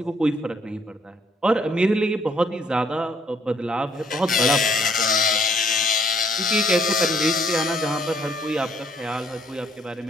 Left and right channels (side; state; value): both; normal; correlation 0.65